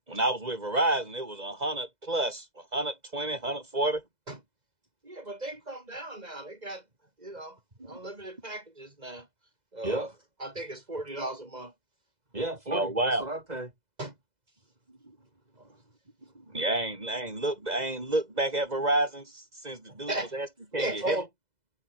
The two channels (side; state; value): left; late; 2.0 ms